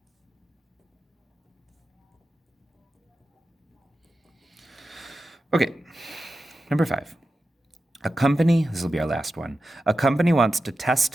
Okay, number 5. This will be our last one. A company wants to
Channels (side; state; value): both; normal; correlation 0.91